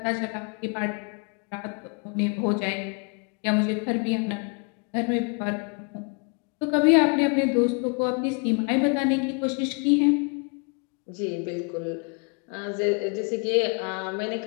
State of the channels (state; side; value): quieter; right; 36.7 dB